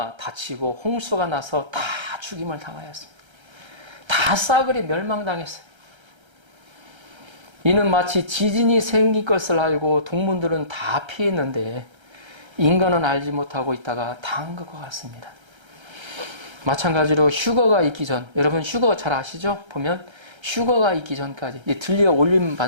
닫히고 홍수가 나서 다 죽임을 당하였습니다. 다 싸그리 멸망당했어요. 이는 마치 지진이 생길 것을 알고 동물들은 다 피했는데 인간은 알지 못하고 있다가 당한 것과 같습니다. 마찬가지로 휴거가 있기 전, 여러분 휴거 잘 아시죠? 보면 휴거가 있기 전까지 들려 올림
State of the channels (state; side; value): late; left; 1.3 ms